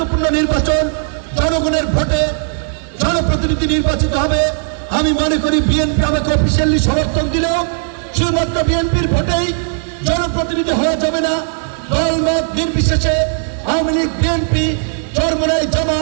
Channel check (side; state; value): left; silent; 69 dB below the other